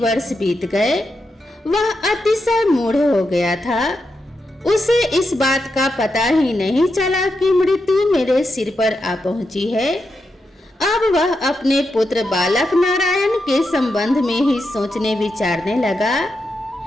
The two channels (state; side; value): normal; both; correlation 0.86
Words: बीत गए। वह अतिशय मूढ़ हो गया था। उसे इस बात का पता ही नहीं चला कि मृत्यु मेरे सिर पर आ पहुंची है। अब वह अपने पुत्र बालक नारायण के संबंध में ही सोचने विचारने लगा।